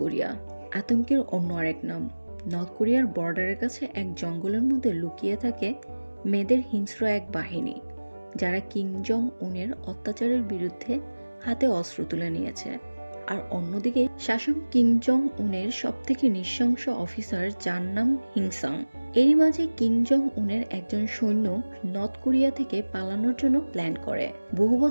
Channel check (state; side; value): inverted; both; correlation -1.00